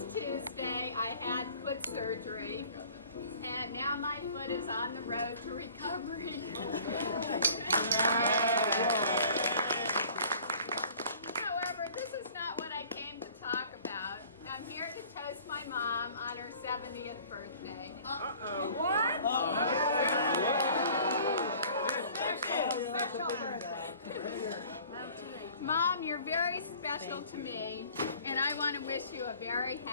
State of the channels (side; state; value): both; inverted; correlation -0.50